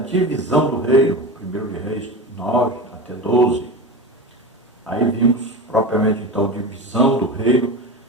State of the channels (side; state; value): both; normal; correlation 0.26